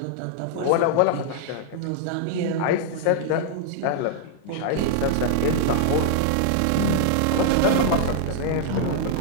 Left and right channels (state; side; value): different; both; correlation -0.01